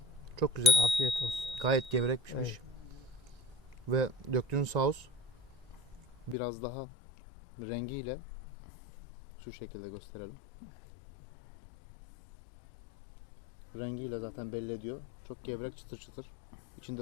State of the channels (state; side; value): drops out; right; at 6.4 s